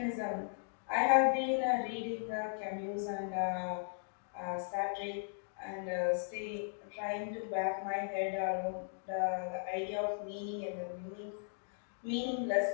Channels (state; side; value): silent; right; digital silence